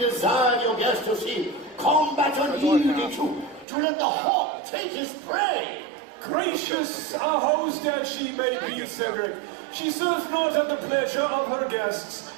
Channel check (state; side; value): drops out; left; at 3.7 s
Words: of your guest to see combat unyielding to let the hawk take his prey. Gracious a host as she may be, Cedric, she serves not at the pleasure of her guests,